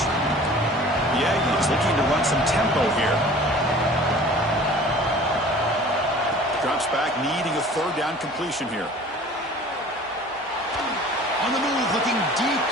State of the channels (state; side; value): normal; both; correlation 0.46